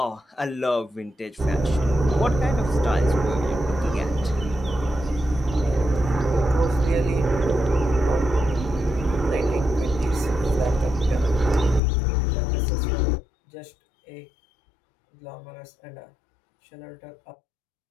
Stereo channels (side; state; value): right; drops out; at 11.8 s